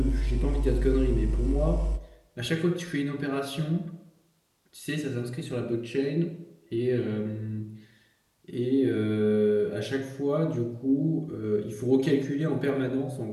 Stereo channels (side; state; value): both; identical; correlation 1.00